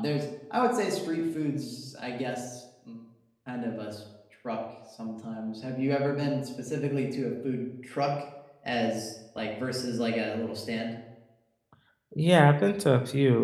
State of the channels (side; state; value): both; identical; correlation 1.00